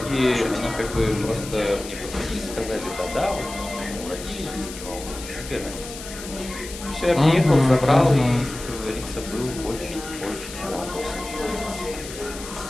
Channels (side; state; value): left; noise; hiss, 12 dB below the sound